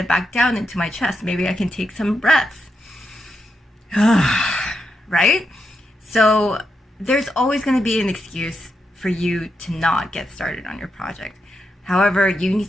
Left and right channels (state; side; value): normal; both; correlation 0.84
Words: back down into my chest. Maybe I can take some breaths. Right? So there's always going to be an excuse for you to not get started on your project. However, you need